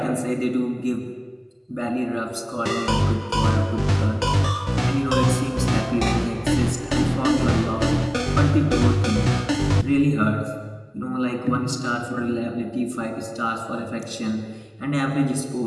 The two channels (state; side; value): identical; both; correlation 1.00